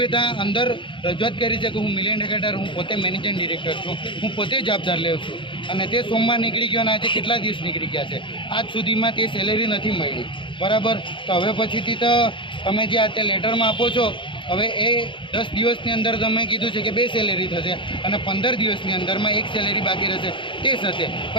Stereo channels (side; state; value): right; late; 0.24 ms